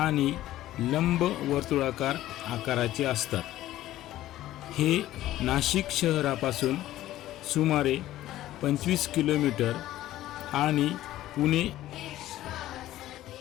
लंब वर्तुळाकार आकाराचे असतात। हे नाशिक शहरापासून सुमारे 25 किलोमीटर आणि पुणे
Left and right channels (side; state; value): right; quieter; 14.4 dB